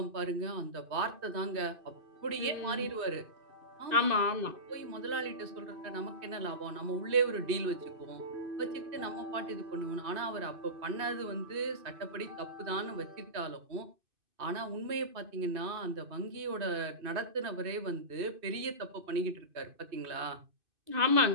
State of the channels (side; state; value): left; late; 2.6 ms